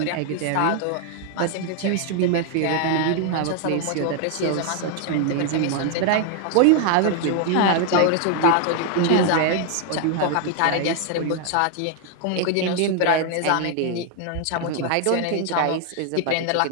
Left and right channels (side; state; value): both; different; correlation 0.00